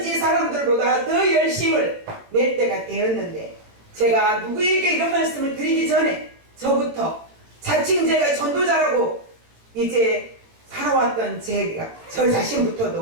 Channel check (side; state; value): left; late; 18 ms